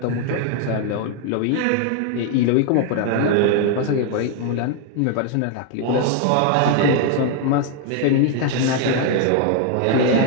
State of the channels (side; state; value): both; different; correlation 0.00